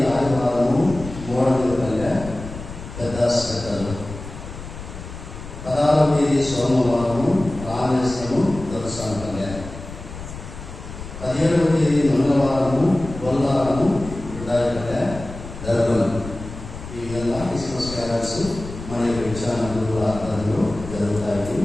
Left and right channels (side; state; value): left; noise; rumble, 12 dB below the sound